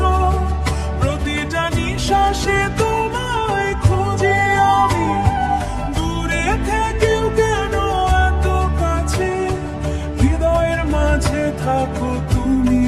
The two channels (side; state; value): both; identical; correlation 1.00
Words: প্রতিটা নিঃশ্বাসে তোমায় খুঁজি আমি। দূরে থেকেও কেন এত কাছে, হৃদয়ের মাঝে থাকো তুমি,